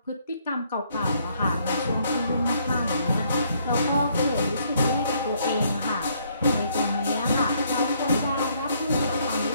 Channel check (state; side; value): inverted; both; correlation -0.68